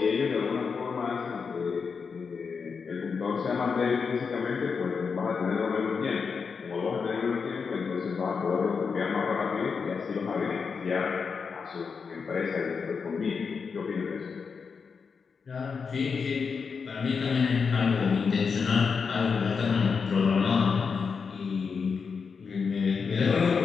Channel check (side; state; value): right; quieter; 5.6 dB